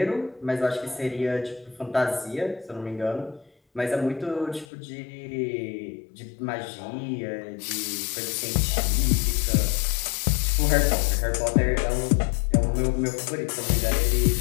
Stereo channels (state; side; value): drops out; right; at 4.7 s